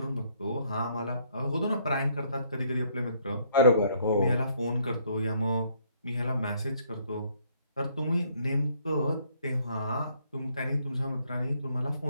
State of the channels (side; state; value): both; inverted; correlation -0.66